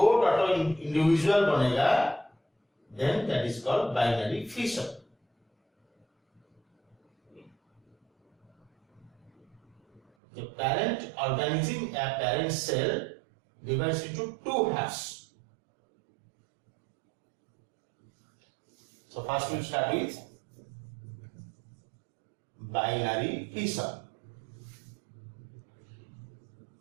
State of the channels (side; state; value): left; drops out; at 10.0 s